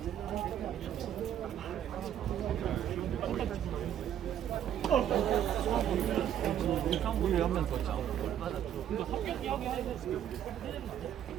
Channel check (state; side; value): quieter; left; 10.3 dB